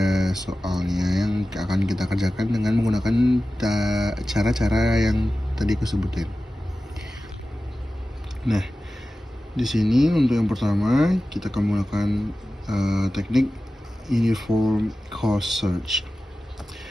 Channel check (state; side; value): normal; both; correlation 0.95